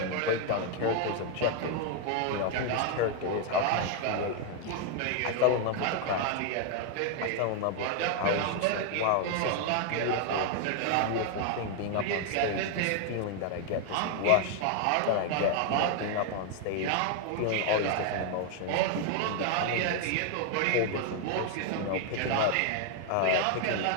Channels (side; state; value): both; different; correlation 0.01